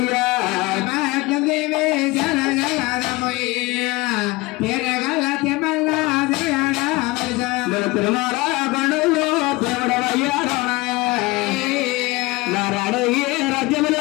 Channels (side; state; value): right; quieter; 22.1 dB